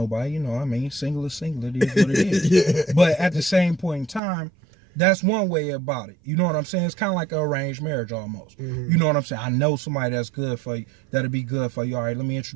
You know what I mean? Single is single. It is what it is. Yeah. But at the same point in time, that's one way about it. You know what I'm saying? It's kind of like an arranged marriage almost. Mm-hmm. You know what I'm saying? I know somebody that's good for you, that'll be good for you. All right, let me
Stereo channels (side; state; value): left; drops out; at 4.2 s